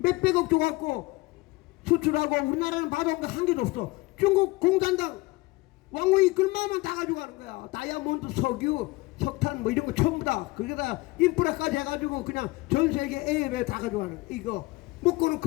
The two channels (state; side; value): quieter; right; 22.4 dB